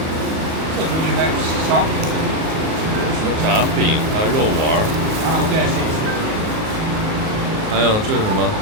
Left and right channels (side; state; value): left; late; 38 ms